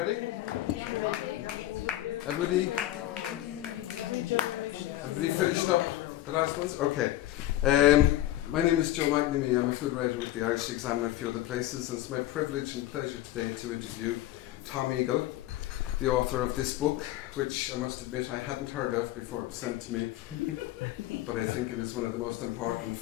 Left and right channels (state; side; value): quieter; right; 14.7 dB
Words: Everybody finished up the last ones? Okay. My name is Joe McNamee. I'm a food writer with the Irish Examiner and a few other places, and it's my privilege and pleasure today to interview Thom Eagle, the author of this book, which I must admit I hadn't heard of before it was sent to me, but I think it is one of the most important